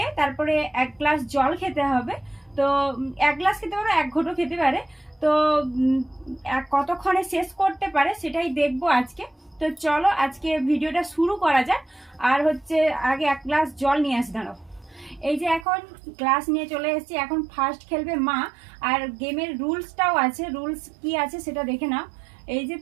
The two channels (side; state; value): left; drops out; at 15.7 s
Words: তারপরে 1 গ্লাস জল খেতে হবে। তো 1 গ্লাস খেতে পারে, 1 ঘোঁটো খেতে পারে। তো কতক্ষণে শেষ করতে পারে সেটাই দেখবো আজকে। তো চলো আজকে ভিডিওটা শুরু করা যাক। আর হচ্ছে আগে 1 গ্লাস জল নিয়ে আসি, দাঁড়াও। এই যে এখন গ্লাস নিয়ে চলে এসেছি। এখন ফার্স্ট খেলবে মা। আর গেমের রুলসটাও আছে, রুলস কি আছে সেটা দেখে নাও। এই যে